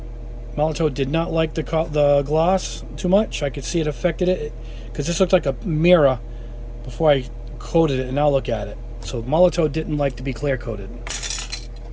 Molotow did not like the gloss too much. I could see it affected it because this looked like a mirror before I coated it, and now look at it. So Molotow didn't like to be clear coated.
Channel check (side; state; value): both; identical; correlation 1.00